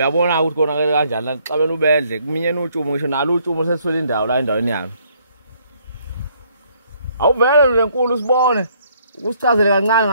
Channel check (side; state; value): both; inverted; correlation -0.66